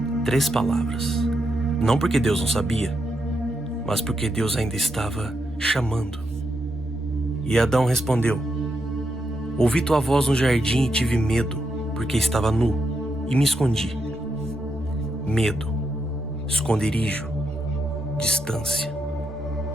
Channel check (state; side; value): normal; both; correlation 0.82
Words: 3 palavras. Não porque Deus não sabia, mas porque Deus ainda estava chamando. E Adão respondeu: ouvi tua voz no jardim e tive medo, porque estava nu e me escondi. Medo, esconderijo, distância.